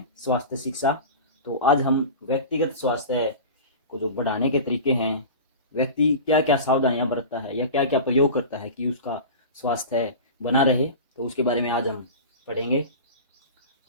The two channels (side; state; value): both; inverted; correlation -0.32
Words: स्वास्थ्य शिक्षा। तो आज हम व्यक्तिगत स्वास्थ्य को जो बढ़ाने के तरीके हैं, व्यक्ति क्या क्या सावधानियां बरतता है या क्या क्या प्रयोग करता है कि उसका स्वास्थ्य बना रहे, तो उसके बारे में आज हम पढ़ेंगे।